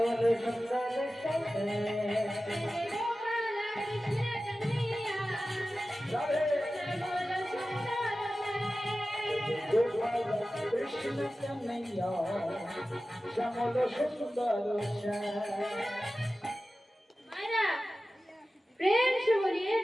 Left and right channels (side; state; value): both; normal; correlation 0.95